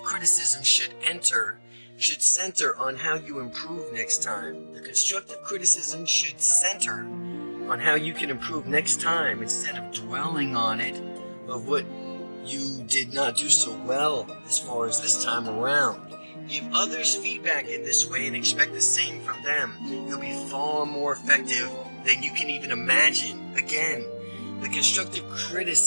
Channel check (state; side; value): inverted; both; correlation -1.00